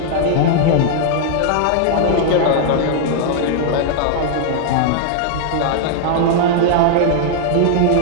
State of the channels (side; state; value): both; different; correlation -0.01